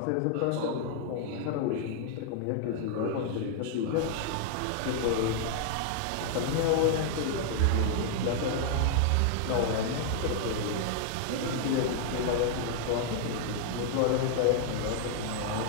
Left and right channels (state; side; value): different; both; correlation -0.01